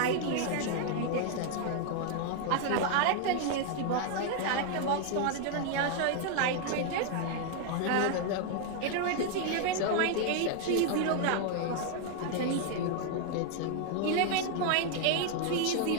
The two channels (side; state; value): both; different; correlation 0.00